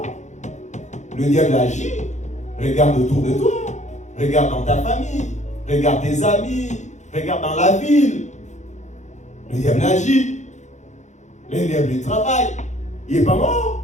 Le diable agit. Regarde autour de toi, regarde dans ta famille, regarde tes amis, regarde dans la ville. Le diable agit. Le diable il travaille. Il n'est pas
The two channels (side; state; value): right; late; 0.34 ms